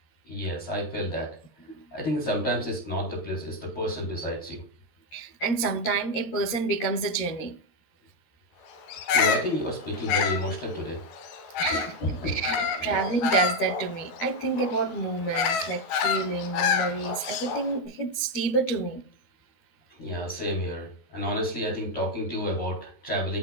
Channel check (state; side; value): late; right; 13 ms